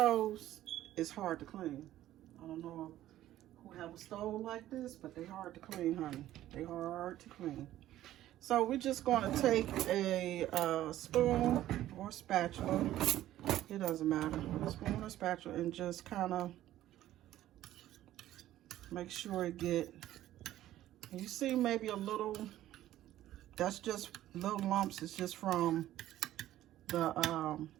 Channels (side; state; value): left; quieter; 13.7 dB